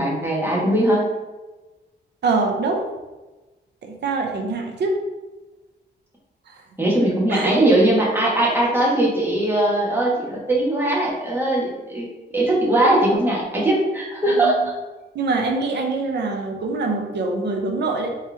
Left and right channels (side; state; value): both; normal; correlation 0.55